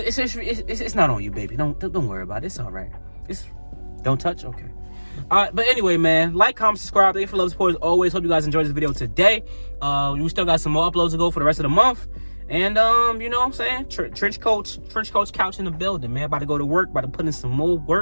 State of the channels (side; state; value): both; inverted; correlation -1.00